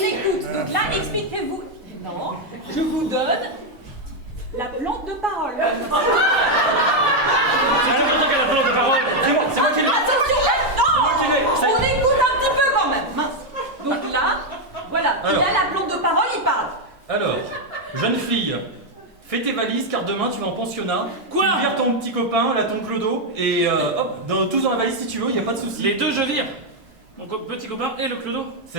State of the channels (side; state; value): both; normal; correlation 0.02